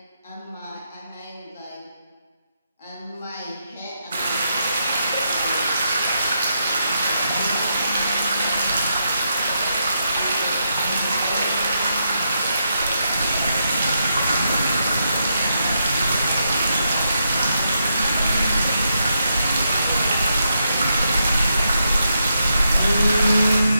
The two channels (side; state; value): both; inverted; correlation -0.82